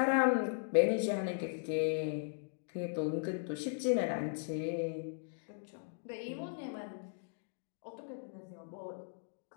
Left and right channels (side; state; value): right; silent; digital silence